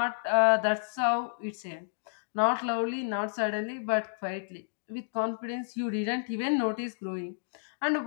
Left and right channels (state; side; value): silent; right; digital silence